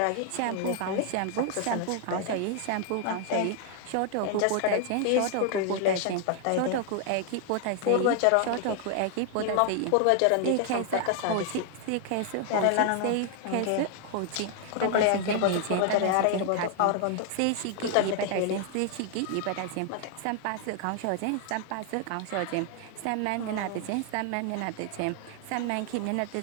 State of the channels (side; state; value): both; different; correlation 0.00